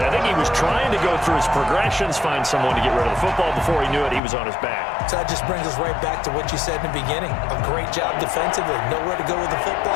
I think he was trying to go through his progressions, find someone to get rid of the football. Before he knew it, he was on his back. So that just brings us right back to what you said in the beginning. A great job defensively. Nowhere to go with the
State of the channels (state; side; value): drops out; right; at 4.2 s